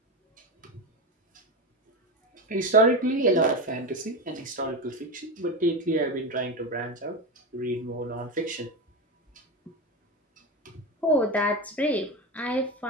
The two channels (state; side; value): normal; both; correlation 0.18